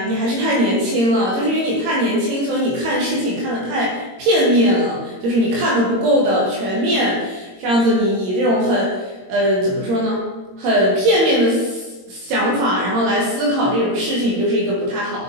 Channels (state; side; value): late; left; 22 ms